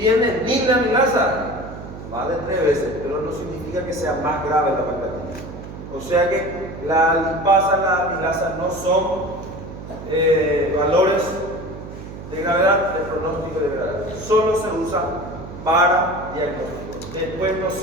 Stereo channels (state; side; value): noise; right; hum, 12 dB below the sound